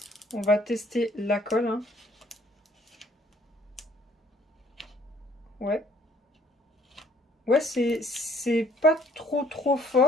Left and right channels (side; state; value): both; normal; correlation 0.60